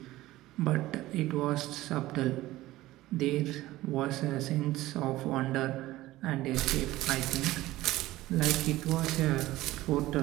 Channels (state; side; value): quieter; left; 16.9 dB